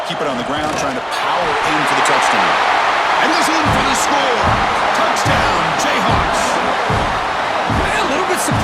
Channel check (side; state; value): both; identical; correlation 1.00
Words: Keep it on the ground, trying to power in for the touchdown. And he's in for the score. Touchdown, Jayhawks. A little bit